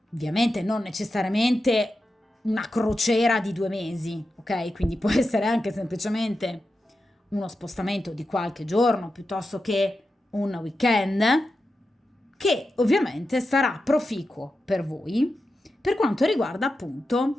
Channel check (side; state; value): both; normal; correlation 0.90